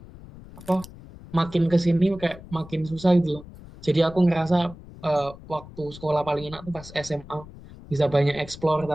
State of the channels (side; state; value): left; noise; rumble, 18 dB below the sound